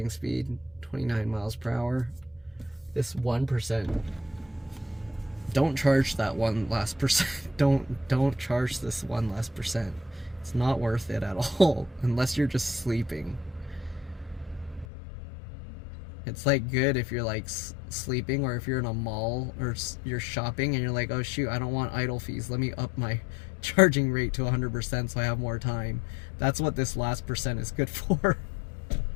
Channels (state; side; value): drops out; right; at 14.9 s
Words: speed, 29 miles per hour. This 1%. Don't charge that one last percent. Don't charge this one last percent. It's not worth it at all unless you're just sleeping. It's like good if you're like sleeping, or if you're in a mall or you're shopping and you're like, oh shoot, I don't want idle fees, let me up my charging rate to 100% so I have more time. That's what this last percent is good for.